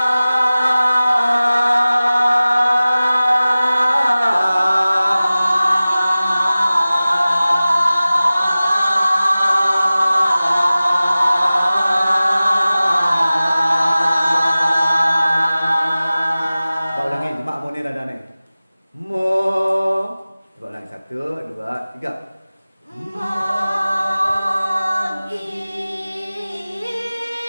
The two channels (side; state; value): both; inverted; correlation -0.97